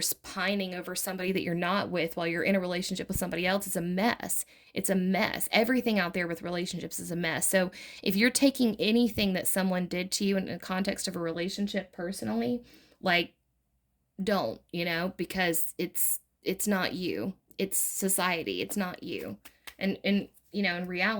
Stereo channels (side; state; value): both; identical; correlation 1.00